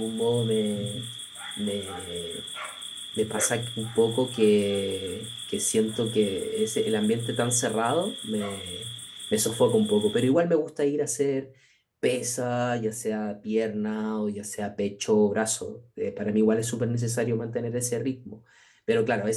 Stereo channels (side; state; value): both; identical; correlation 1.00